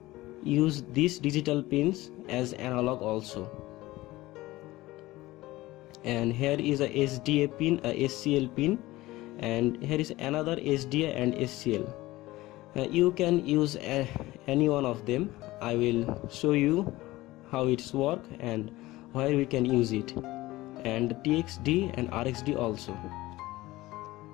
use these digital pins as analog also. And here is a SDA pin, a SCL pin, and here is another SDA and SCL. You can use any one of them. I will show you how it's work and where we can use it, and TXD and RXD also.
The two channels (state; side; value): quieter; right; 18.3 dB